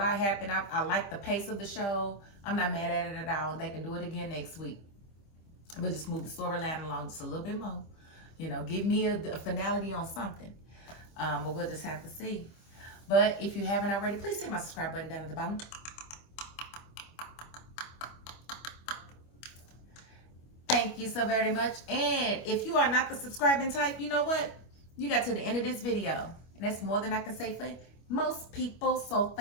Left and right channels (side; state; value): right; late; 25 ms